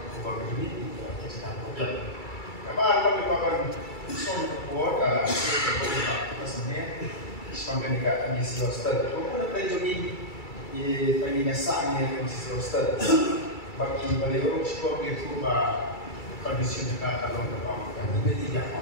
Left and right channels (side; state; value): right; late; 2.3 ms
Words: kubah ini kita kerja. Apa kami akan son buat sebenarnya sepanjang dekat misi hostel. Aku nak pergi di pagi nasanya misi hostel. Bagi beliau sekolah itu kondisi mereka kalau berapa ini tidak